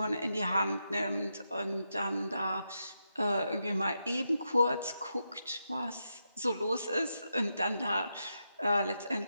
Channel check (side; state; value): both; inverted; correlation -0.85